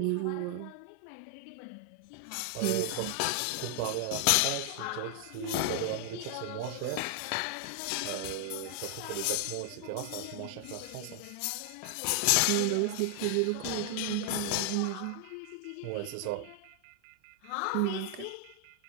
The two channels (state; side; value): different; both; correlation 0.00